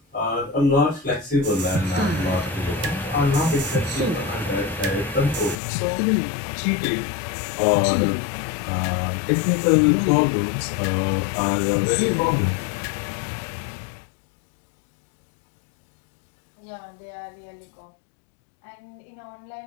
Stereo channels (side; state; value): right; drops out; at 5.6 s